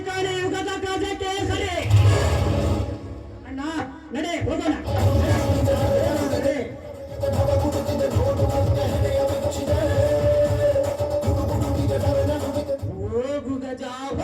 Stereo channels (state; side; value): identical; both; correlation 1.00